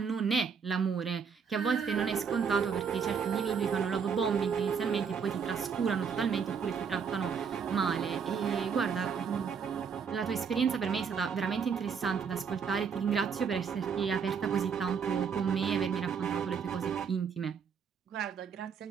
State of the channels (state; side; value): quieter; left; 6.4 dB